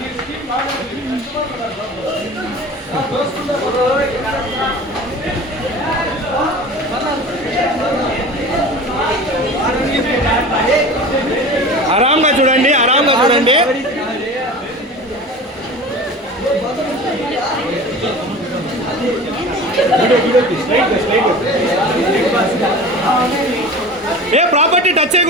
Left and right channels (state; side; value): normal; both; correlation 0.36